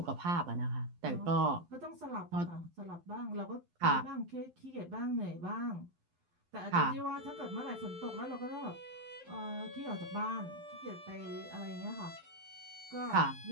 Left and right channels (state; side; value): late; left; 12 ms